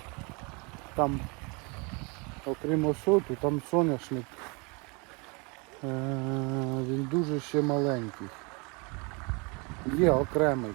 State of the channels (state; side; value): quieter; left; 30.3 dB